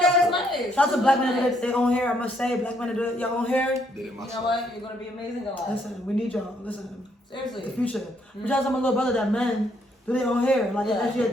nice. Shout out to black men that do their own hair. I must say, black men that do your own hair. Did it You myself. know what? You're going to be amazing alive. Listen, we need y'all. Listen, Seriously. the future. But shout out to my little brother that men do their own hair. Like, that's your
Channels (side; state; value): both; normal; correlation 0.71